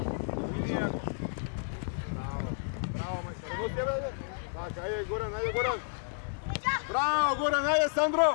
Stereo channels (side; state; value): right; silent; digital silence